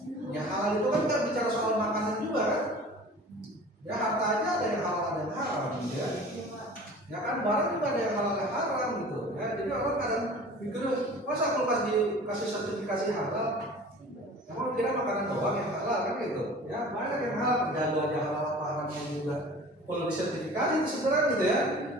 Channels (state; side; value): normal; both; correlation 0.42